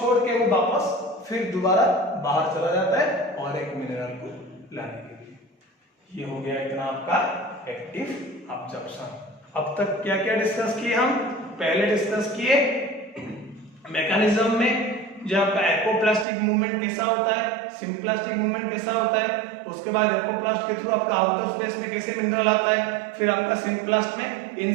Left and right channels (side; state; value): left; drops out; at 16.2 s